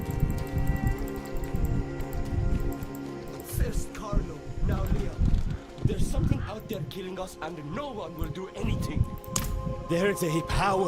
First Carlo, now Leo. There's something out there killing us and no one will do anything. There's a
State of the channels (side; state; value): both; identical; correlation 1.00